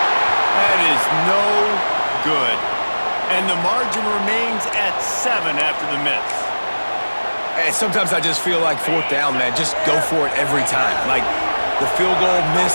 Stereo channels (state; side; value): inverted; both; correlation -1.00